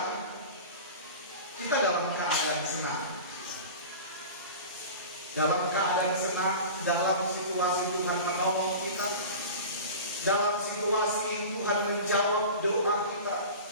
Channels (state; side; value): inverted; both; correlation -0.33